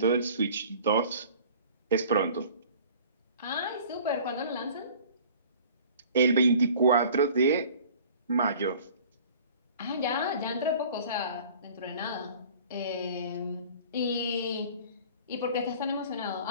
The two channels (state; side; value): inverted; both; correlation -0.48